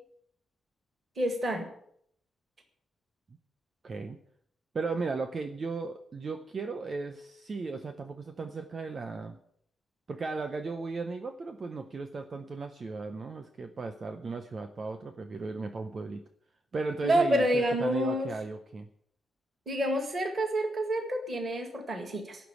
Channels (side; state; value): both; normal; correlation 0.82